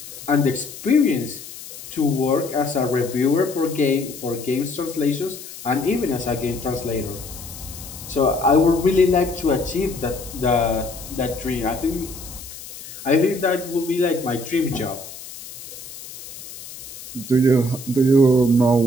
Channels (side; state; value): left; noise; hiss, 14 dB below the sound